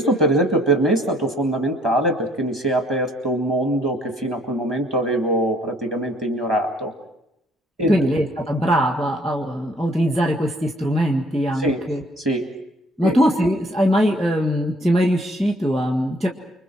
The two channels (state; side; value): normal; both; correlation 0.62